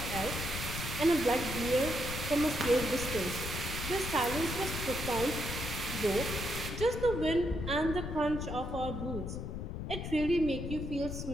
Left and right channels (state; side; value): noise; left; rumble, 5 dB below the sound